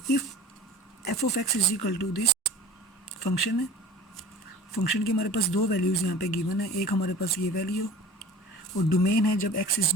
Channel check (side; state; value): both; normal; correlation 0.41